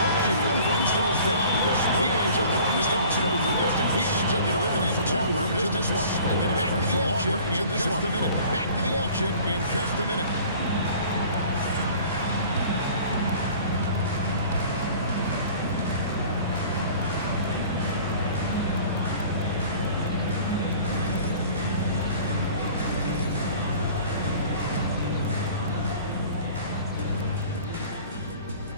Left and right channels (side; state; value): both; inverted; correlation -0.47